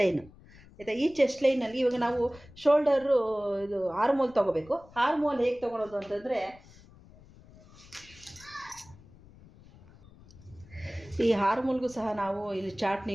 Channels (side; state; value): left; noise; rumble, 23 dB below the sound